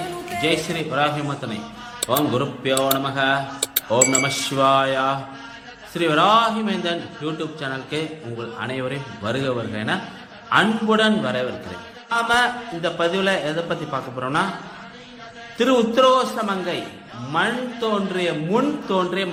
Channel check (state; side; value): identical; both; correlation 1.00